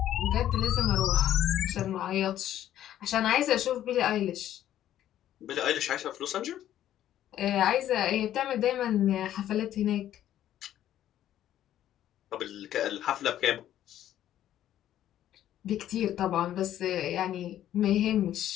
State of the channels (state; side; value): quieter; right; 11.9 dB